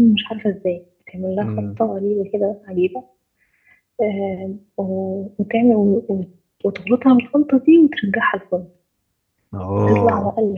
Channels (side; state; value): both; identical; correlation 1.00